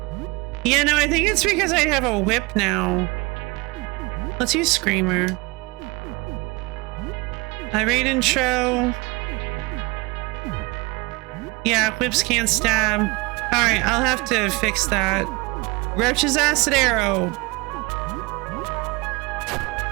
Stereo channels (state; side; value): quieter; left; 25.4 dB